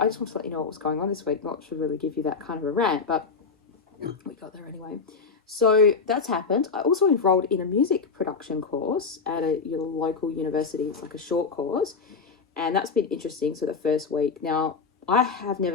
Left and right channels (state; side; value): quieter; right; 5.0 dB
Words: just want to let you know what was going on this week. Not to really give you that kind of a rant, but we got there anyway. So that's happened. I also enrolled in a music production course at your local university. It's like a short course, and that's been interesting. So the first week, now I have